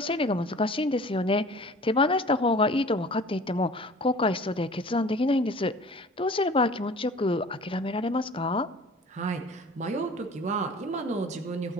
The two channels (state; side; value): normal; both; correlation 0.45